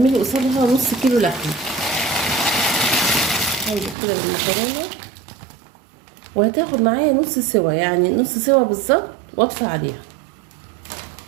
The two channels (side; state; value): left; drops out; at 4.0 s